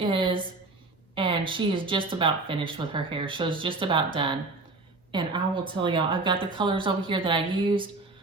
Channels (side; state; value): left; quieter; 3.3 dB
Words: and she is just about finished with her hair. She's just about done. And I will tell y'all, I've got the colors over here that I used.